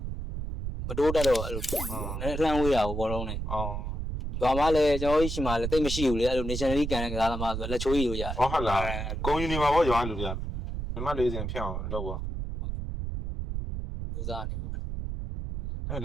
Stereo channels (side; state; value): right; noise; rumble, 4 dB below the sound